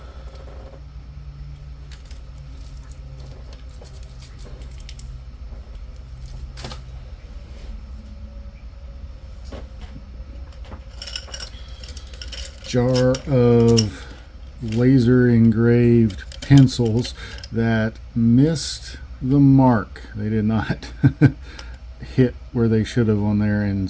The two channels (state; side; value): identical; both; correlation 1.00